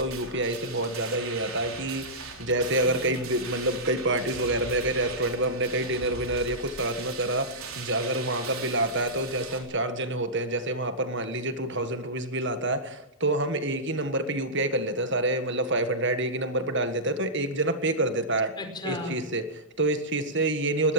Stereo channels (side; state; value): both; normal; correlation -0.14